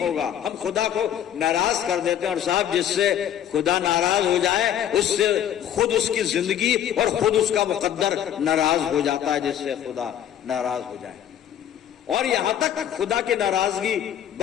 हम खुदा को नाराज कर देते हैं, और साहब जिससे खुदा नाराज हो जाए उससे खुद उसकी जिंदगी और खुद उसका मुकद्दर नाराज हो जाता है, जिससे खुदा नाराज हो जाए। और यहां तक खुदा की नाराजगी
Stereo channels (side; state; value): right; quieter; 10.3 dB